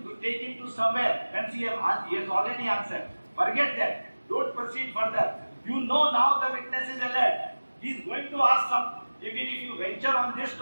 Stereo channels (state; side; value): inverted; both; correlation -1.00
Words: take him to somewhere when he has already answered. Forget that. Don't proceed further. You know now the witness is alert. He is going to ask something. Even if you venture on this